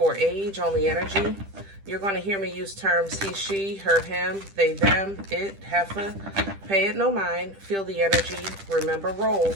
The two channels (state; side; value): late; left; 10 ms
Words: age, only energy. You're going to hear me use terms he, she, her, him, they, them, it, heifer. Pay it no mind. Feel the energy. Remember,